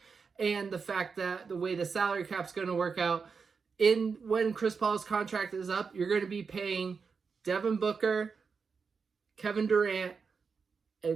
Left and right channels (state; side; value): quieter; left; 5.4 dB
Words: and the fact that the way the salary cap's going to work out. When Chris Paul's contract is up, you're going to be paying Devin Booker, Kevin Durant,